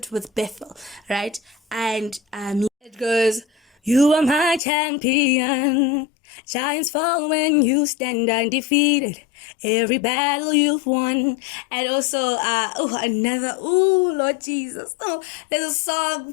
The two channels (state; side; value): drops out; right; at 4.6 s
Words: with Bethel, right? And it goes, "You are my champion. Giants fall when you stand undefeated. Every battle you've won." And also, Lord Jesus. Oh, there's a